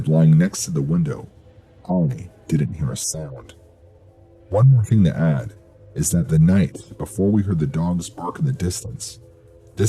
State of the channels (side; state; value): both; identical; correlation 1.00